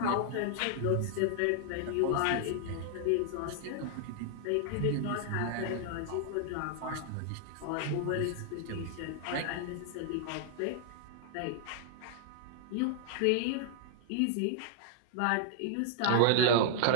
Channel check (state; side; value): different; both; correlation -0.01